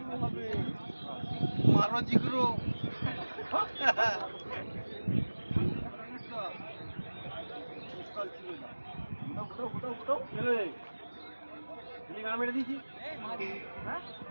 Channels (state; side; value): inverted; both; correlation -1.00